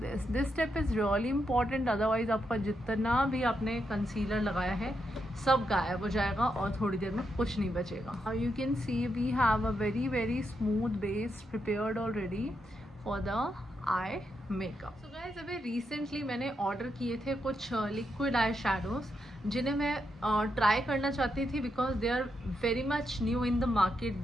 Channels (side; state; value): both; normal; correlation 0.82